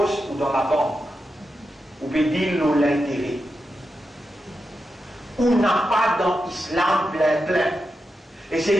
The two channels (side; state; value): both; normal; correlation 0.88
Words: ou dans la banque, ou peut dire l'intérêt. Ou ou n'a pas dans l'islam plein. Et c'est